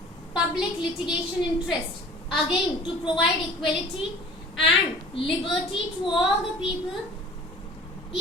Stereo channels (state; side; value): normal; both; correlation 0.45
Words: public litigation interest, again to provide equality and liberty to all the people